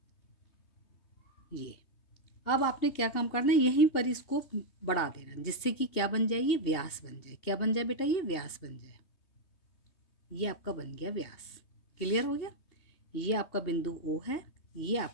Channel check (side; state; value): right; late; 2.7 ms